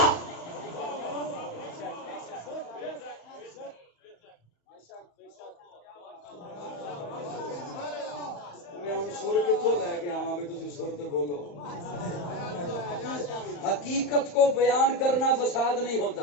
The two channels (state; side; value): late; right; 34 ms